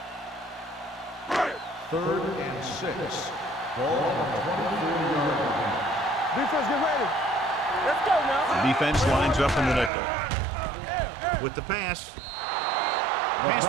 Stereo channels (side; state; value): left; drops out; at 9.9 s